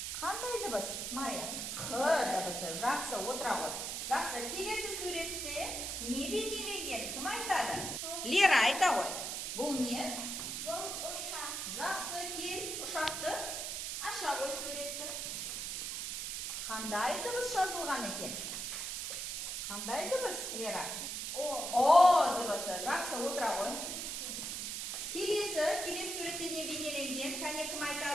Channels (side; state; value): right; noise; hiss, 3 dB below the sound